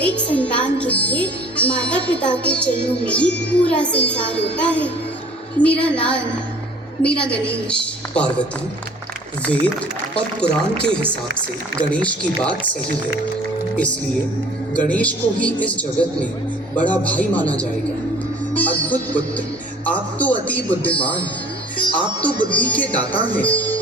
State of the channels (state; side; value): normal; both; correlation 0.51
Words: संतान के लिए माता पिता के चरणों में ही पूरा संसार होता है। मेरा लाल, मेरा गणेश। पार्वती, वेद और पुराण के हिसाब से गणेश की बात सही है, इसलिए गणेश को ही इस जगत में बड़ा भाई माना जाएगा। अद्भुत पुत्र, आप तो अति बुद्धिमान, आप तो बुद्धि के दाता हैं।